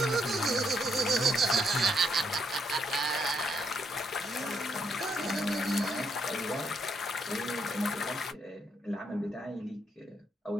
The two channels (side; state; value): both; normal; correlation 0.75